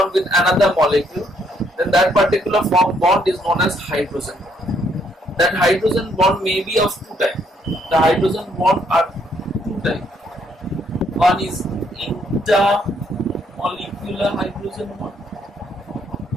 with another molecule. Then that particular bond is known as hydrogen bond. That hydrogen bond may be of two types. The hydrogen bond are two types. One is intermolecular hydrogen bond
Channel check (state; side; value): normal; both; correlation 0.70